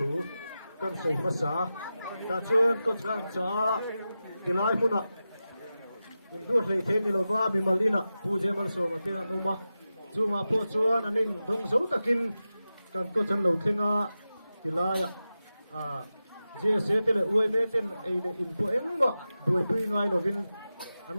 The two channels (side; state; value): both; inverted; correlation -0.93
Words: kan sei ma sa ta chuan coach ran cha tilai muna in dur lei the ni lova mi malina puje mal so ma te na numa chunga po chuan anin dong zo takin kan ko chan lo thenga tilaya je se tele ui me ten ei le in po eng ma boi pui ngai lovin an